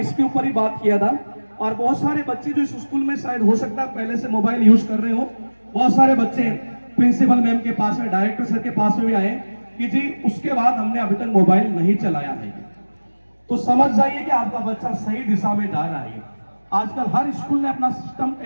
ऊपर ही बात किया था। और बहुत सारे बच्चे जो इस स्कूल में शायद हो सकता है पहले से मोबाइल यूज कर रहे हो, बहुत सारे बच्चे प्रिंसिपल मैम के पास में, डायरेक्टर सर के पास में भी आए कि जी उसके बाद हमने अभी तक मोबाइल नहीं चलाया है। तो समझ जाइए कि आपका बच्चा सही दिशा में जा रहा है। आजकल हर स्कूल ने अपना सिस्टम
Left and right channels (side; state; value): both; inverted; correlation -1.00